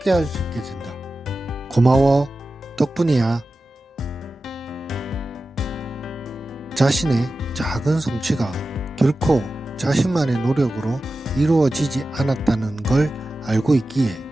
할 수 있게 된다. 고마워. 덕분이야. 자신의 작은 성취가 결코 자신만의 노력으로 이루어지지 않았다는 걸 알고 있기에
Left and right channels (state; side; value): normal; both; correlation 0.94